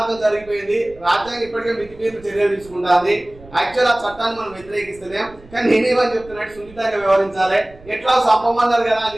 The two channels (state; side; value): noise; right; rumble, 23 dB below the sound